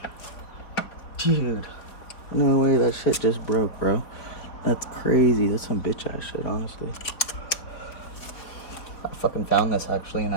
Dude, no way, that shit just broke, bro. That's crazy. That's some bitch ass shit, honestly. I fucking found this actually in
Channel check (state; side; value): late; right; 4.5 ms